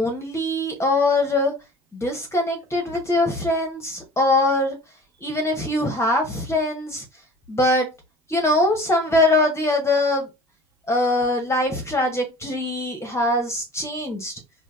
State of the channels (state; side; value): normal; both; correlation 0.43